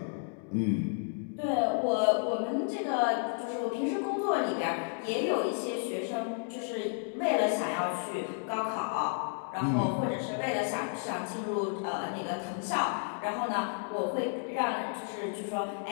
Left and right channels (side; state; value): right; silent; 56 dB below the other